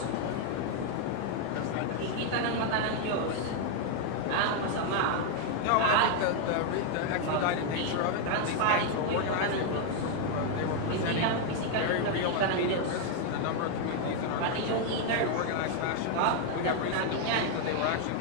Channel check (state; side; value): different; both; correlation 0.00